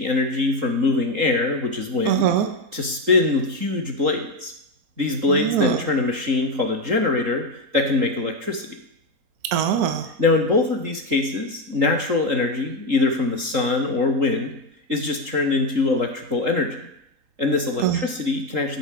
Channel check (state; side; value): late; left; 3.8 ms